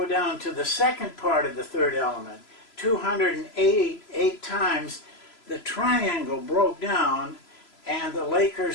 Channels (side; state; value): right; late; 3.0 ms